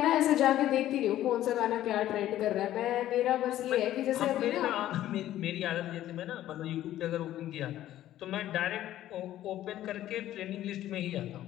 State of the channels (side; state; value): right; quieter; 13.2 dB